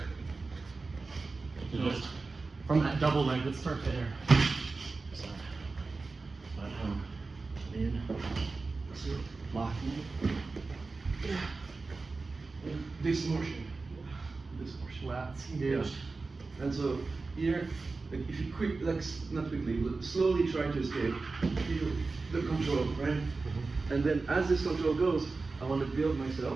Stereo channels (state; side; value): quieter; left; 3.9 dB